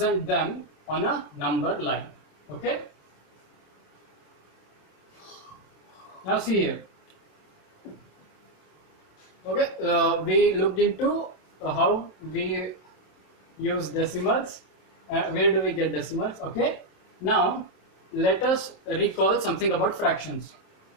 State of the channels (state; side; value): late; right; 27 ms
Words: them on a number line. Okay, now see here. Okay, we looked into how we use decimals, where do we get decimals. Okay, now let us recall something about fractions.